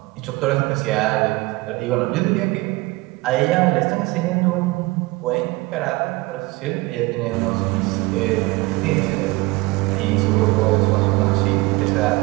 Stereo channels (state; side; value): quieter; left; 22.5 dB